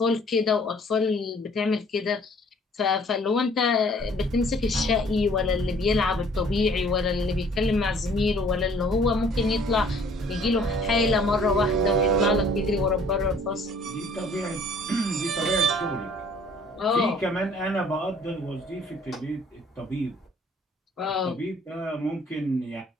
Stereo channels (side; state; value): both; normal; correlation 0.56